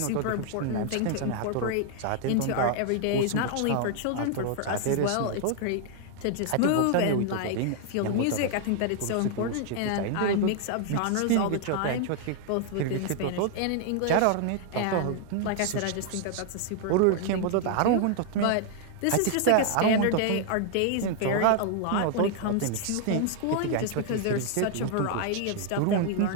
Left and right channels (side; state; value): both; different; correlation 0.00